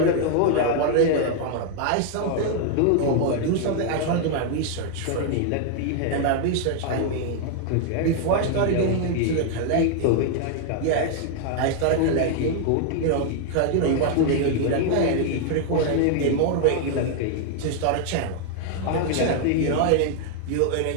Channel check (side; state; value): both; different; correlation 0.00